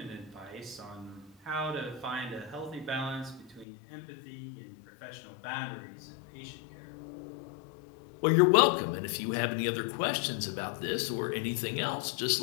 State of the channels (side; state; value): right; drops out; at 3.7 s